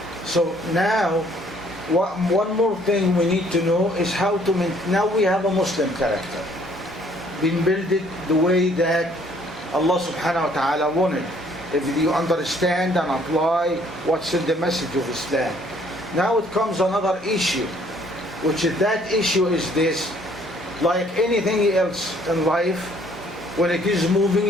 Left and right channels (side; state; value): both; normal; correlation 0.62